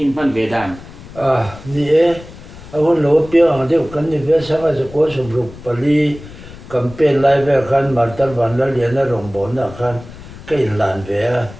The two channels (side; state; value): left; noise; rumble, 17 dB below the sound